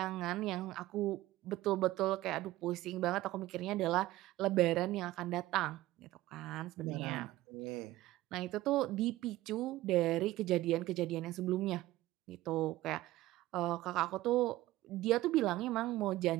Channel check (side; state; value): left; quieter; 16.7 dB